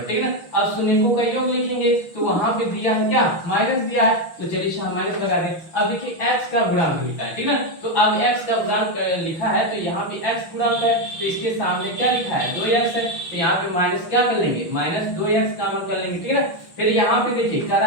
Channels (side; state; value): right; late; 6.1 ms